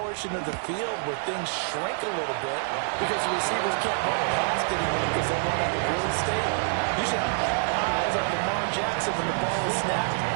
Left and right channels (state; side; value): silent; left; 59 dB below the other